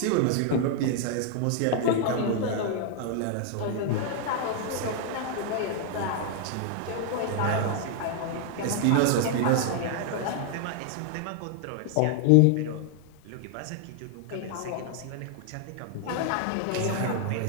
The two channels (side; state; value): both; different; correlation 0.00